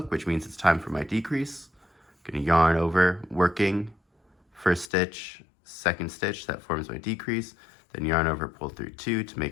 which means it's time for my decrease. I'm going to yarn over, working, first stitch, second stitch, that forms my decrease, then yarn over, pull through 2 to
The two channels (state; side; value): drops out; right; at 4.9 s